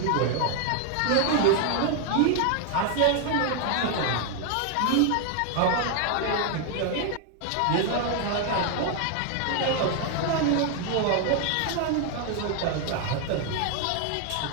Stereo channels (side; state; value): both; different; correlation 0.01